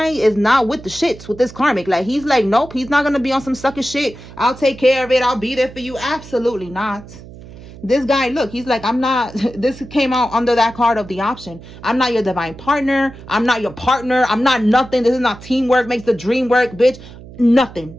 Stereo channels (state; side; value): noise; right; hum, 17 dB below the sound